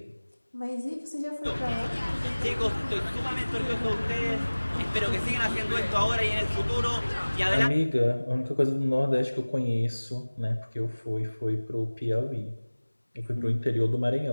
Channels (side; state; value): both; inverted; correlation -1.00